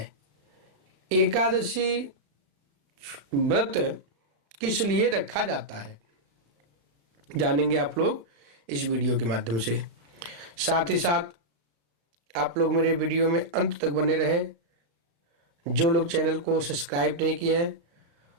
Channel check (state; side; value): late; left; 35 ms